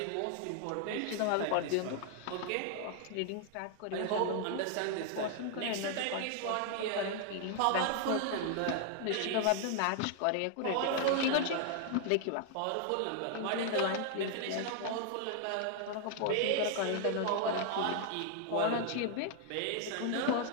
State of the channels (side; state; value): both; different; correlation 0.00